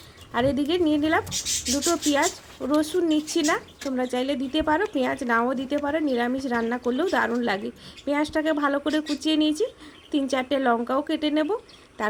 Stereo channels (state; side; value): identical; both; correlation 1.00